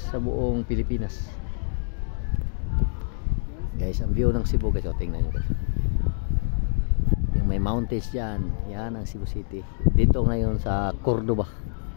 buong Pilipinas. Guys, ang view ng Cebu guys, tingnan nyo guys. Yung may mountains dyan, yan ang Cebu City. Dito ngayon sa Cordoba.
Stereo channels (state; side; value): silent; right; digital silence